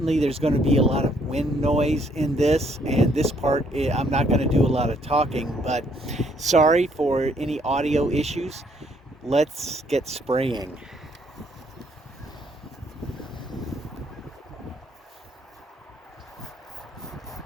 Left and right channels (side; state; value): both; normal; correlation 0.67